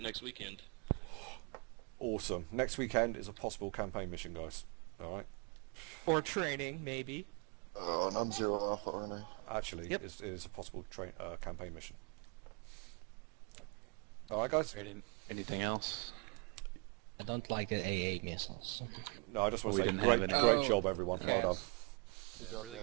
next weekend. Awesome. Next weekend is a possible campaign mission, guys. All right. or training maybe. Oh, and I'm 0 Alpha, aren't I? Actually, Yep. it is a possible campaign mission. All right, guys. Anything else? I don't like the AA missiles. No, I just want We to say didn't have great any. job, everyone. Well done. Really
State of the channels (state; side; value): quieter; left; 33.5 dB